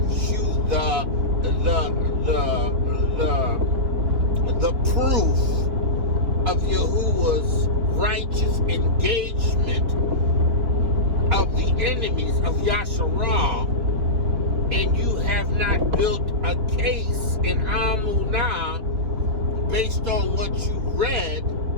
you the proof of Yahuah's righteous engagement of the enemies of Yasharah, and you have not built a case in Amunah based on what you read,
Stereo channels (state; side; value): late; left; 4.1 ms